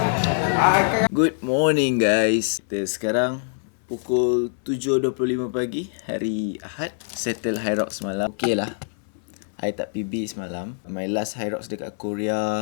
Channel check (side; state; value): right; silent; 63 dB below the other